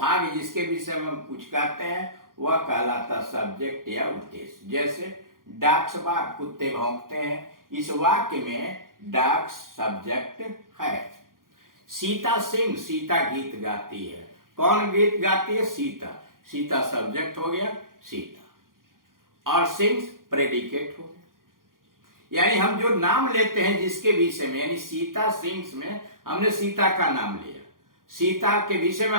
जिसके विषय में हम कुछ कहते हैं, वह कहलाता सब्जेक्ट या उद्देश्य। जैसे डॉग्स बार्क, कुत्ते भौंकते हैं, इस वाक्य में डॉग्स सब्जेक्ट है। सीता सिंग, सीता गीत गाती है। कौन गीत गाती है? सीता। सीता सब्जेक्ट हो गया, सीता, और सिंग्स प्रेडिकेट हो गया। यानी हम जो नाम लेते हैं जिसके विषय में, यानी सीता सिंग्स में हमने सीता का नाम लिया, सीता के विषय में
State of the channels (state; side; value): late; left; 0.91 ms